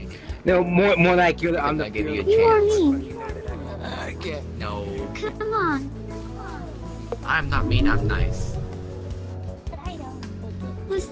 No, more like you're on the You or me? No. Come on. I'm not mean, I'm nice. Was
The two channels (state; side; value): identical; both; correlation 1.00